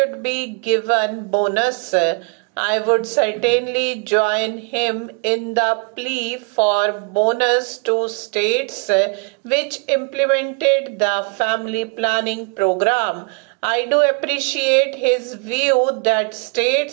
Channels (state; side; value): quieter; left; 33.9 dB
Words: be given bonus. I would certainly join him in the plea for bonus to states which implemented the family planning program. I do appreciate his view that